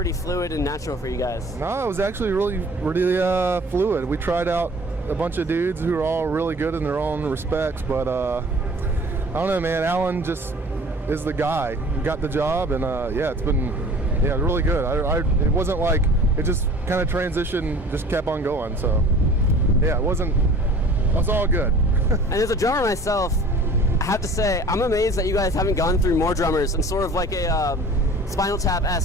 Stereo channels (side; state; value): both; normal; correlation 0.47